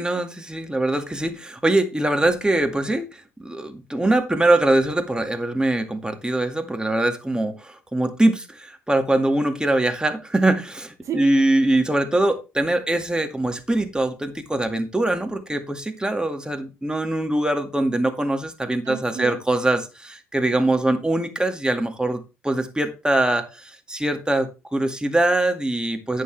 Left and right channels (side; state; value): both; normal; correlation 0.91